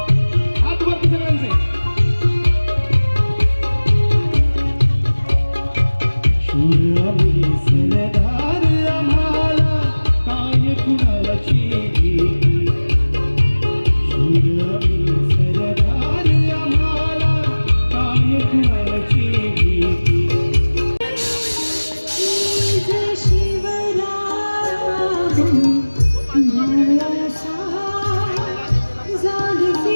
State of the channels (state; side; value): inverted; both; correlation -1.00